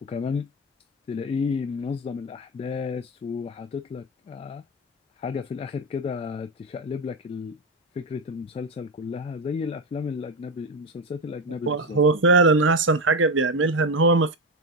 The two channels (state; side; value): normal; both; correlation 0.13